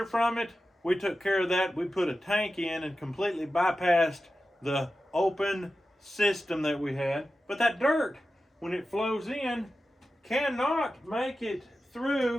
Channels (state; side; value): normal; both; correlation 0.93